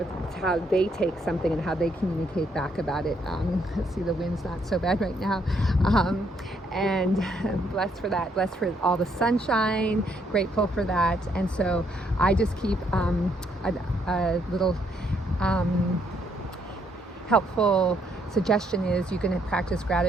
how they take something and how they communicate back about it. Let's see, the wind's not so bad right now, and blessed for that, blessed for all the sunshine, grateful for that. And so I just keep a little helpful suggestion is you can practice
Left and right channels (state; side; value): normal; both; correlation 0.72